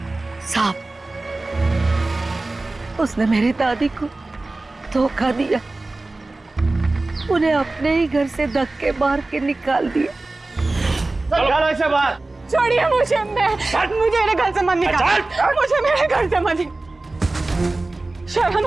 सांप। उसने मेरी दादी को धोखा दिया, उन्हें अपने ही घर से धक्के मार के निकाल दिया। चलो ऐसे बात। छोड़िए मुझे, मुझे मेरे घर से मत निकाल, मुझे मेरे घर से मत। शर्म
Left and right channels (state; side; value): quieter; left; 3.1 dB